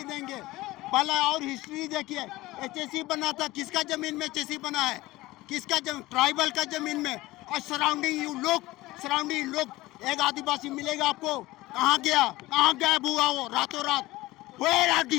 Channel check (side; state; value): right; quieter; 18.7 dB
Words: देंगे। पहला और हिस्ट्री देखिए, एचएससी बना था, किसका जमीन में एचएससी बना है? किसका ट्राइबल का जमीन में। और सराउंडिंग लोग एक आदिवासी मिलेगा आपको, कहाँ गया, कहाँ गायब हुआ वो रातों रात? Where are